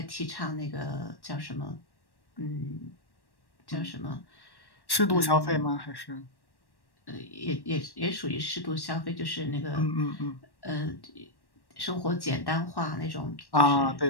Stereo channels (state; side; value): late; right; 1.1 ms